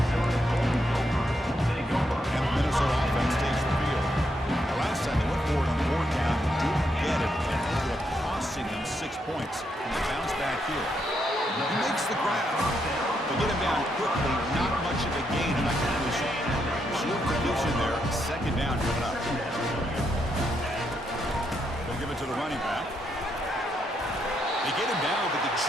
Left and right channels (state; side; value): normal; both; correlation 0.79